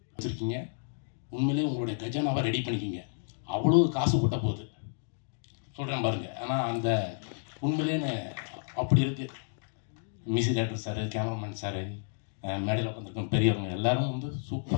வச்சுருக்கீங்க. உண்மையிலே உங்களுடைய கஜானாவை ரெடி பண்ணிக்கிங்க, அவ்வளோ காசு கொட்ட போகுது சொல்கிறேன் பாருங்கள். ஆனால் அந்த உண்மையிலேன்னு அப்படி இருக்குது. Music director sir, cameraman sir, மேடையில் உட்காந்துருக்கோம் பெரியவங்க எல்லாரும்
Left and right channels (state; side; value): silent; right; digital silence